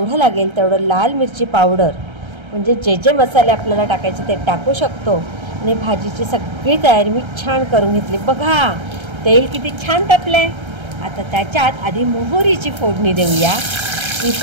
लागेल तेवढं लाल मिरची पावडर, म्हणजे जे जे मसाले आपल्याला टाकायचे ते टाकू शकतो. आणि भाजीची सगळी तयारी मी छान करून घेतली. बघा तेल किती छान तापलं आहे. आता त्याच्यात आधी मोहरीची फोडणी देऊया. ही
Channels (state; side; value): late; left; 1.3 ms